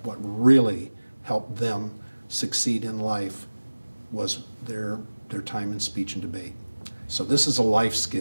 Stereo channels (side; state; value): both; inverted; correlation -1.00